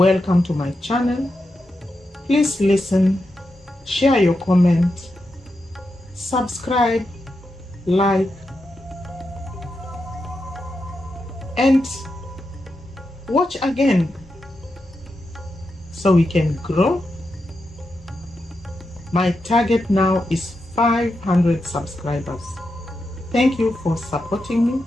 to my channel. Please listen, share your comment, subscribe, like, and watch again so we can grow. My target now is 500 subscribers. Thank you for supporting me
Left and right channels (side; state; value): both; normal; correlation 0.87